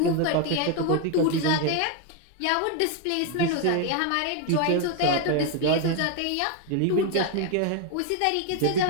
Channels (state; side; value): different; both; correlation 0.01